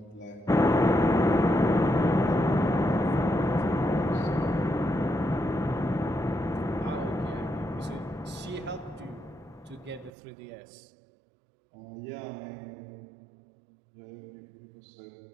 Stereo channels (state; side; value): drops out; left; at 10.1 s